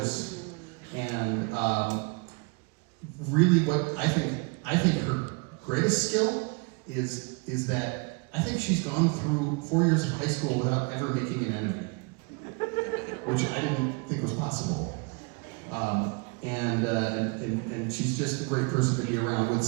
and really what I think her greatest skill is that I think she's gone through 4 years of high school without ever making an enemy, which I didn't think was possible. And she's just a great person to be around with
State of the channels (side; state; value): left; quieter; 32.2 dB